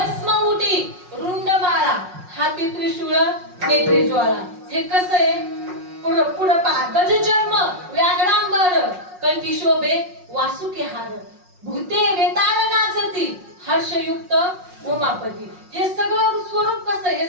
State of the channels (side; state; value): left; late; 5.5 ms